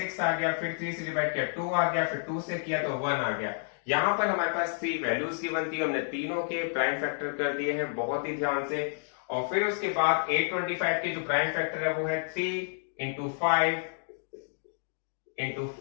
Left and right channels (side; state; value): right; silent; digital silence